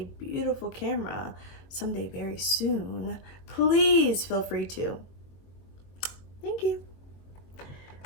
beautiful camera someday very soon, please feel free to. Thank you.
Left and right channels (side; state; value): right; late; 22 ms